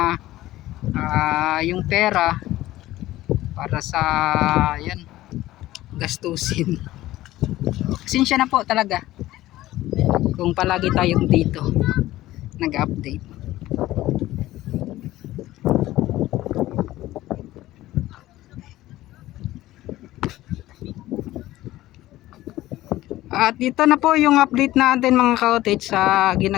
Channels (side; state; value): right; quieter; 15.9 dB